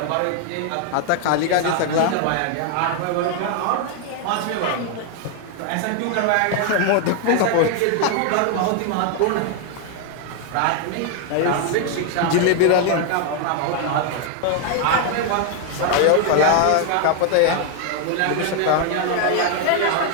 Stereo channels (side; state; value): both; different; correlation 0.00